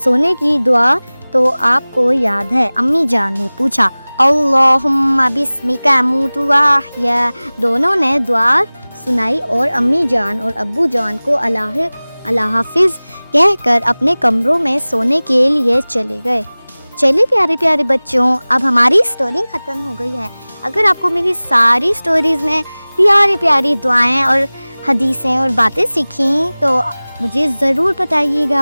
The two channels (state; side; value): inverted; both; correlation -1.00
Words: سونے کی دعا تو آپ کو یاد ہے؟ امی جان نے پوچھا اللہم بسمک اموت و احیا۔ دونوں نے دعا سنائی اور امی جان اور ابو جان کو اللہ حافظ کہہ کر اپنے کمروں میں سونے کے لیے چلے گئے۔ چلیے پیارے پیارے بچوں، اب ہماری سٹوری ختم ہو گئی ہے۔ اگر آپ کو میری ساری سٹوریز میں پیاری پیاری دعائیں اور حدیثیں اور باتیں سیکھیں تو مجھے ضرور بتائیے